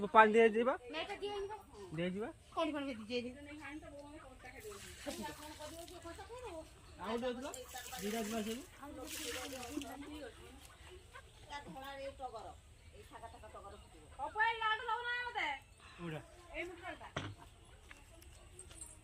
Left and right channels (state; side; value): identical; both; correlation 1.00